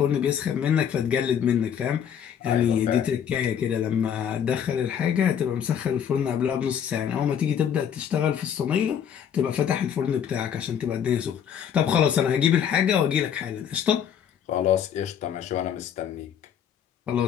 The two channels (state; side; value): quieter; right; 8.7 dB